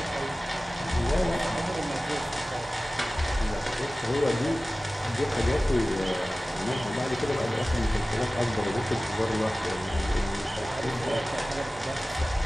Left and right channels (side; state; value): both; normal; correlation 0.97